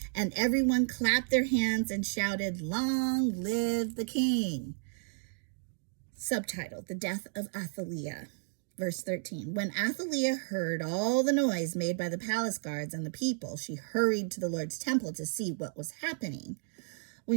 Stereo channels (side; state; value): left; silent; digital silence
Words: and everyone clapped their hands and shouted, "Long live the king." Subtitle, The Death of Athaliah. Verse 13, when Athaliah heard all the noise made by the palace guards and the people, she hurried to the Lord's temple to see what was happening.